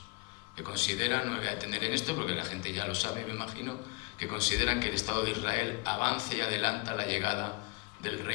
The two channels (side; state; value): right; quieter; 25.6 dB